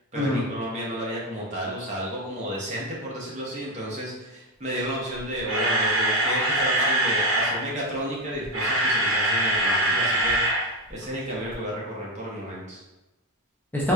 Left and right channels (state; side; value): normal; both; correlation 0.11